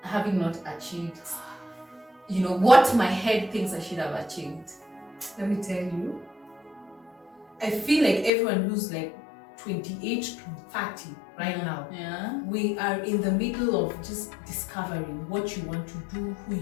having not achieved, what my head thinks I should have achieved. Let me tell you, I feel like everyone who's like 28 to 30 right now, we are in the middle of just discovering what you want to do, who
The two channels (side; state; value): right; drops out; at 8.3 s